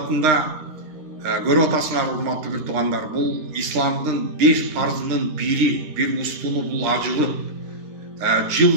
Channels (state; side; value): late; left; 13 ms